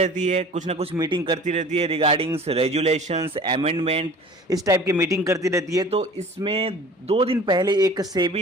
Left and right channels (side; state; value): both; normal; correlation 0.44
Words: है, कुछ ना कुछ मीटिंग करती रहती है रिगार्डिंग्स रेजुलेशंस, अमेंडमेंट, इस टाइप की मीटिंग करती रहती है। तो इसमें 2 दिन पहले एक